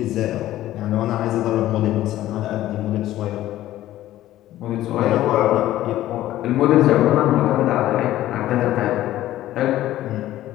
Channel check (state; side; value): quieter; right; 14.2 dB